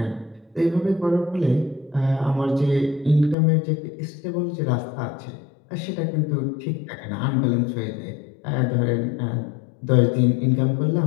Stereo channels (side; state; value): right; drops out; at 3.4 s